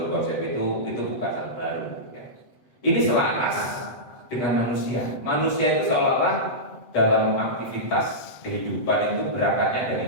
konsep itu bukan hal baru. Ya. Ini selaras dengan manusia. Manusia itu seolah-olah dalam aktivitas kehidupan itu berangkatnya dari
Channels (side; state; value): right; late; 7.9 ms